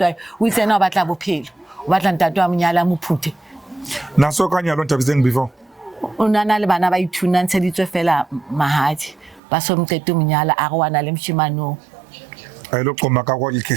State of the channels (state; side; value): drops out; left; at 9.4 s